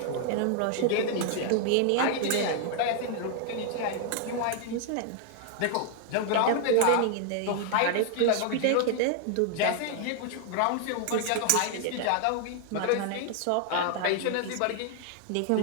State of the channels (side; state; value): both; different; correlation 0.00